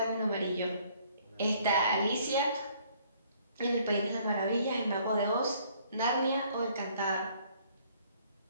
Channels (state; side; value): inverted; both; correlation -0.61